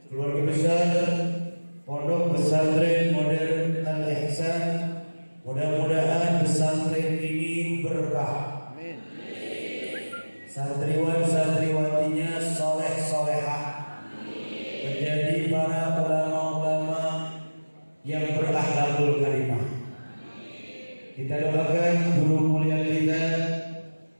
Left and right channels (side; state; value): both; inverted; correlation -1.00